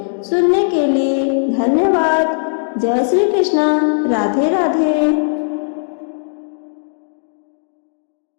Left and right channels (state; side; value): silent; right; digital silence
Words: सुनने के लिए धन्यवाद। जय श्री कृष्ण। राधे राधे।